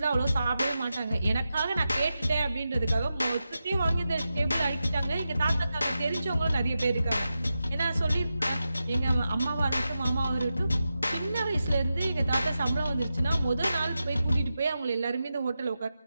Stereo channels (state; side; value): inverted; both; correlation -0.91